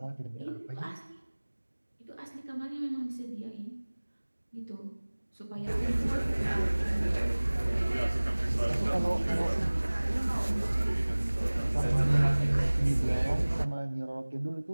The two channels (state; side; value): inverted; both; correlation -1.00